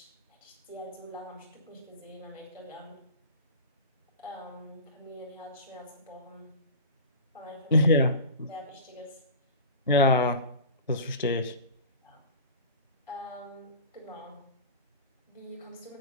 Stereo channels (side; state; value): both; inverted; correlation -0.33